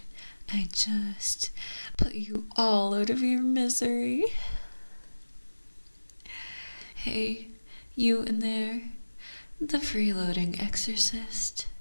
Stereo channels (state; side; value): inverted; both; correlation -1.00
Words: I just put you all out of your misery? Hey, you in there, the freeloading exorcist.